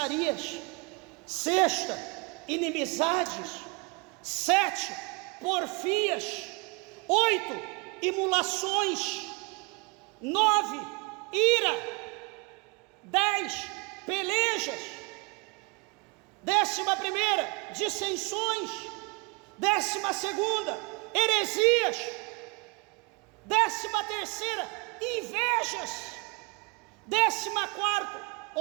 Sexta, inimizades. 7, porfias. 8, imulações. 9, ira. 10, pelejas. 11ª, dissensões. 12ª, heresias. 13ª, invejas. 14º,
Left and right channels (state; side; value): quieter; left; 29.3 dB